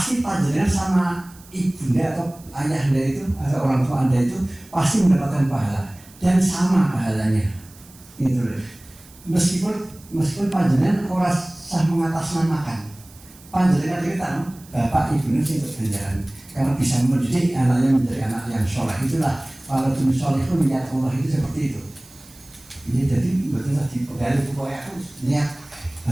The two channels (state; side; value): noise; right; hiss, 24 dB below the sound